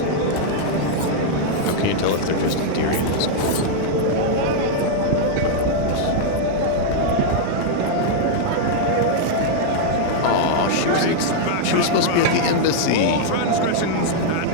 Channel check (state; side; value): different; both; correlation -0.01